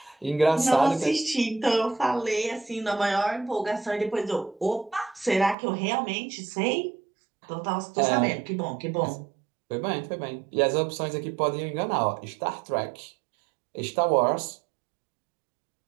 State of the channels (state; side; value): drops out; left; at 5.6 s